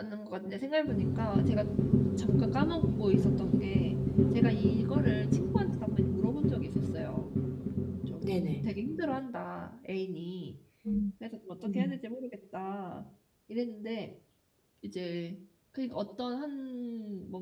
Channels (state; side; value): identical; both; correlation 1.00